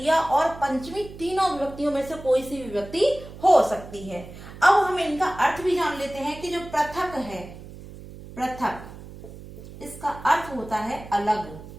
और पंचमी तीनों विभक्तियों में से कोई सी विभक्ति हो सकती है। अब हम इनका अर्थ भी जान लेते हैं कि जो पृथक है, पृथक, इसका अर्थ होता है अलग,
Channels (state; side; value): noise; right; hum, 15 dB below the sound